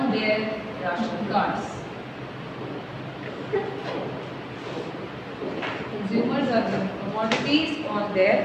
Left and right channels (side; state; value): both; identical; correlation 1.00